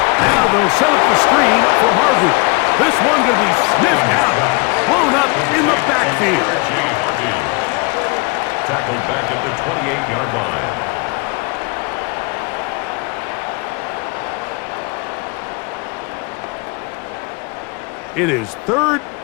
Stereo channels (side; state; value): right; quieter; 28.4 dB